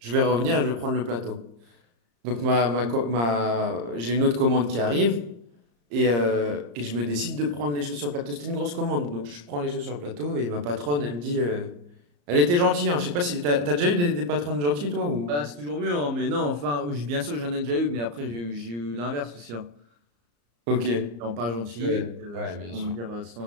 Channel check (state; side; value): late; left; 34 ms